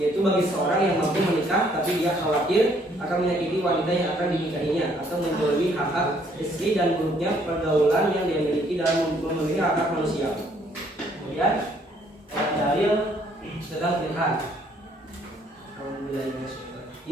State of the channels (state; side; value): normal; both; correlation 0.65